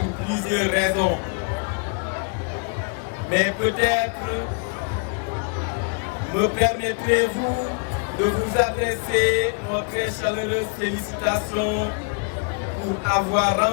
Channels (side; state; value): right; quieter; 37.4 dB